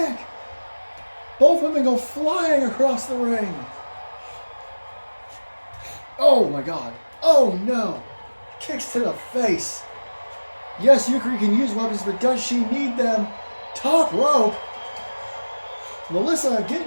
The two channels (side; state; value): both; inverted; correlation -1.00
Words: Both women go flying across the ring. Oh my God. Oh no. Kicks to the face. Yes, Yukari can use weapons, but does she need them? Top rope. Melissa